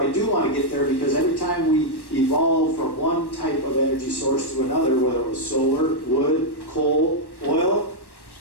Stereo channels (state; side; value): late; right; 1.1 ms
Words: I do want to get there because every time we evolve from one type of energy source to another, whether it was solar, wood, coal, oil,